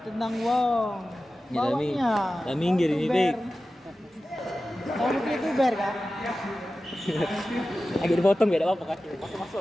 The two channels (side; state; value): both; normal; correlation 0.94